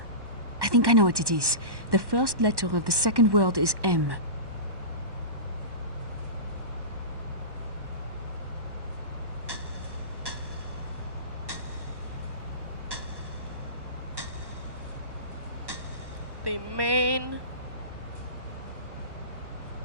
I think I know what it is. The first letter of the second word is M. The main.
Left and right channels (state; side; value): late; left; 1.1 ms